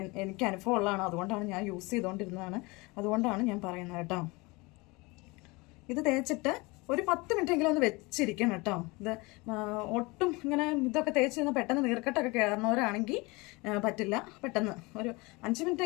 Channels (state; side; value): quieter; right; 25.0 dB